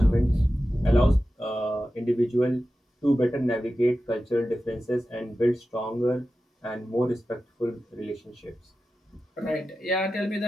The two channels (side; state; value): both; normal; correlation 0.93